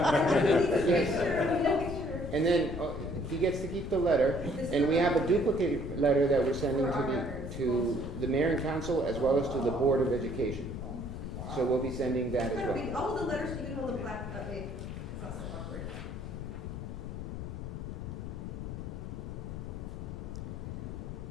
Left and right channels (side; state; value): left; noise; rumble, 7 dB below the sound